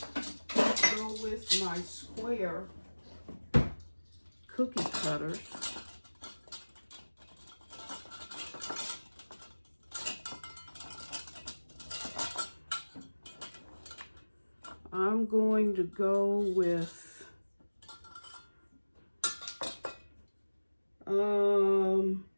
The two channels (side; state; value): both; inverted; correlation -1.00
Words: go with my square cookie cutters. I'm going to go with